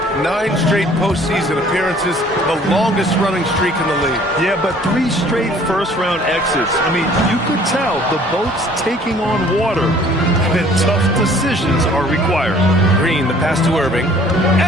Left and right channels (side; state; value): both; normal; correlation 0.54